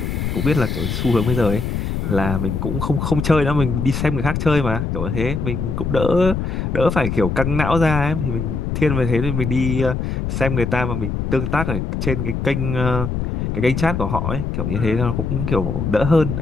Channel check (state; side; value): noise; left; rumble, 2 dB below the sound